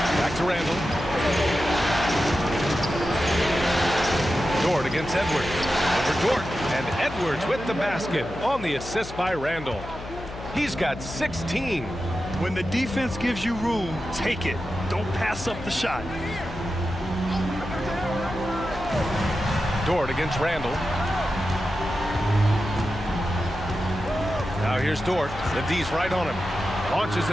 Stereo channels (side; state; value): left; noise; hum, 12 dB below the sound